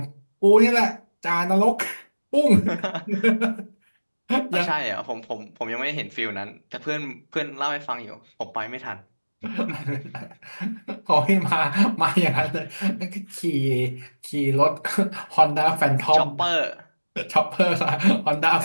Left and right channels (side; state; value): both; inverted; correlation -1.00